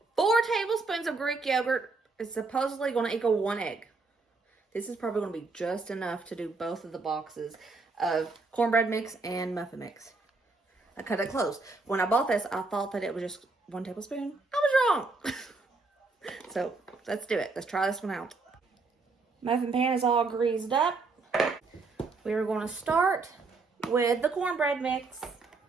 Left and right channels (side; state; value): left; quieter; 3.9 dB